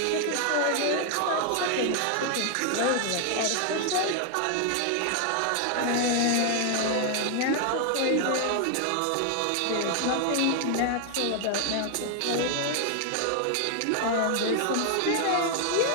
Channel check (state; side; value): different; both; correlation 0.00